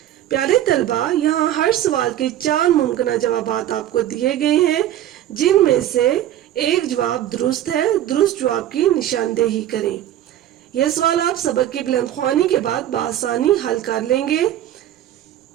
پیارے طلبہ، یہاں ہر سوال کے 4 ممکنہ جوابات آپ کو دیے گئے ہیں جن میں سے ایک جواب درست ہے. درست جواب کی نشاندہی کریں. یہ سوال آپ سبق کی بلند خوانی کے بعد بآسانی حل کر لیں گے.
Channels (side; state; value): left; quieter; 12.2 dB